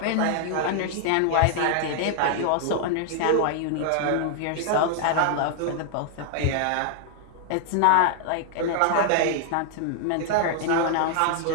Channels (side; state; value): both; different; correlation -0.01